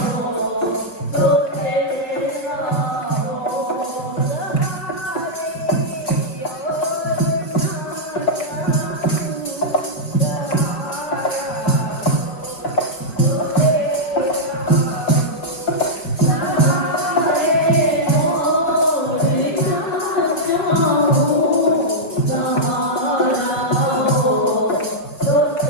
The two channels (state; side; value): late; right; 5.0 ms